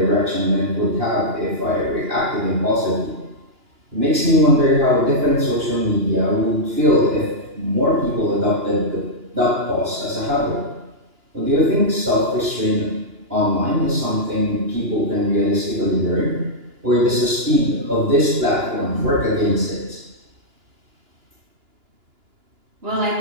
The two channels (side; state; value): left; late; 2.9 ms